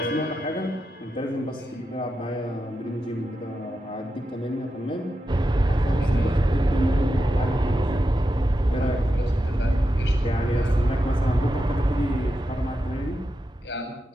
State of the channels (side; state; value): both; normal; correlation 0.88